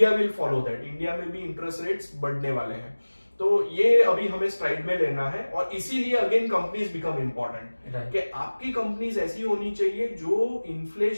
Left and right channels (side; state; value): both; inverted; correlation -1.00